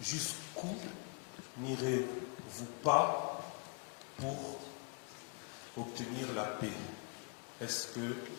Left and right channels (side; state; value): right; quieter; 37.3 dB